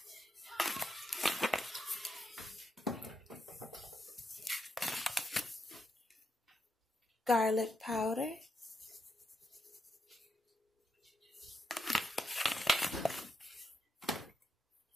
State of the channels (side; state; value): both; normal; correlation 0.82